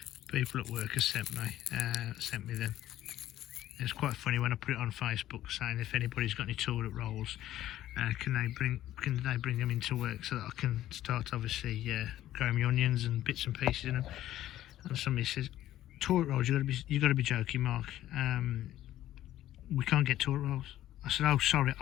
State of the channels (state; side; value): quieter; right; 13.4 dB